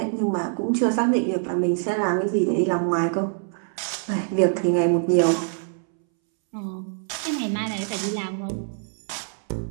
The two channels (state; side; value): silent; left; 62 dB below the other